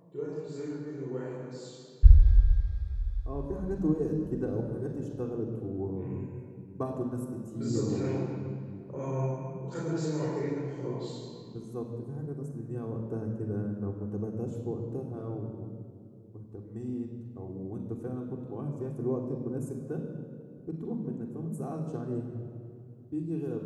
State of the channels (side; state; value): both; identical; correlation 1.00